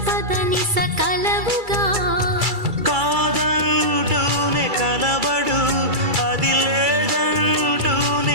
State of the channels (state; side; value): late; left; 2.3 ms